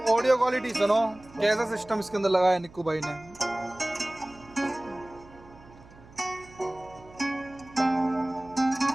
ऑडियो क्वालिटी सुनो, कैसा सिस्टम इसके अंदर लगाया निक्कू भाई ने।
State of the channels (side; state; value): right; noise; hum, 22 dB below the sound